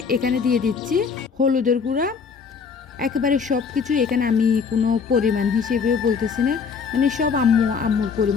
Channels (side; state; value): right; quieter; 5.8 dB